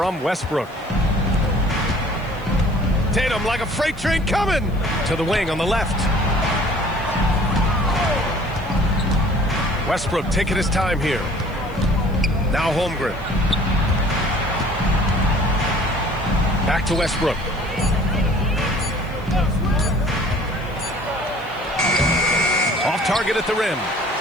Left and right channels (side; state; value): right; noise; hiss, 27 dB below the sound